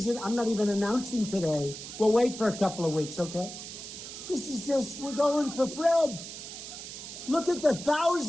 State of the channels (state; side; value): noise; right; hiss, 10 dB below the sound